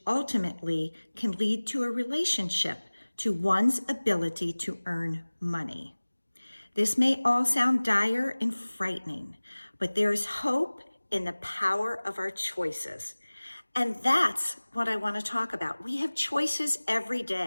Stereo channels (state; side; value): inverted; both; correlation -1.00